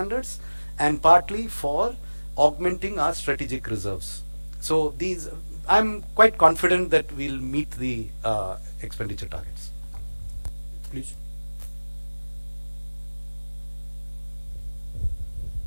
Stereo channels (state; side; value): inverted; both; correlation -1.00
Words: and partly for augmenting our strategic reserves. So I'm quite confident that we'll meet the expenditure targets. Please.